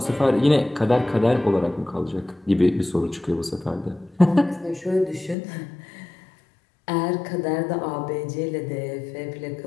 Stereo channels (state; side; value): drops out; right; at 5.4 s